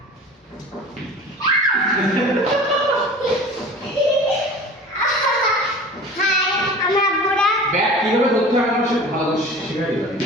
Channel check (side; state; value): both; normal; correlation 0.39